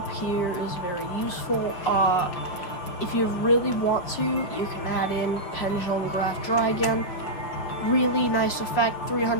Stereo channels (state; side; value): late; right; 6.1 ms